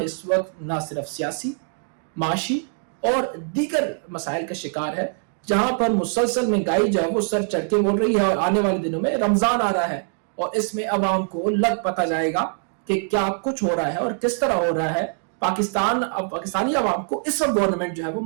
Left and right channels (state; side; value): silent; left; 63 dB below the other